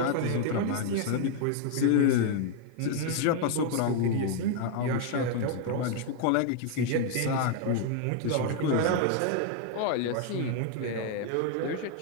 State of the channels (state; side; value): different; both; correlation 0.00